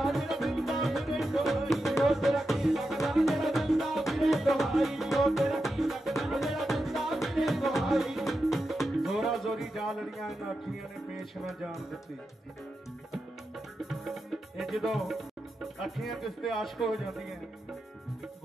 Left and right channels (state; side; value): normal; both; correlation 0.89